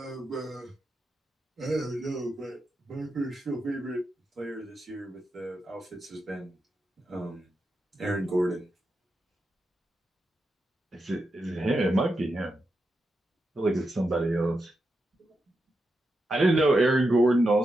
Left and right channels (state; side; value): normal; both; correlation 0.87